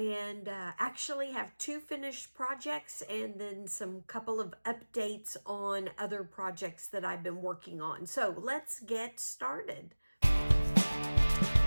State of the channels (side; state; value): both; inverted; correlation -1.00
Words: actually have two finished projects and then some couple of updates on other projects that I've been working on. So let's get started.